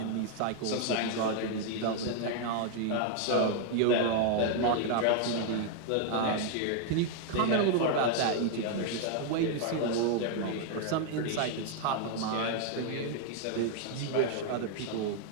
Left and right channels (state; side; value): different; both; correlation 0.00